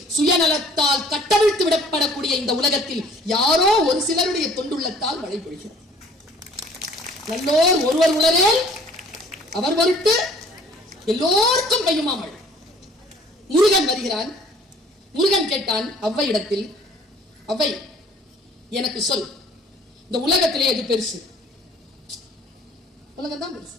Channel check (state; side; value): normal; both; correlation 0.54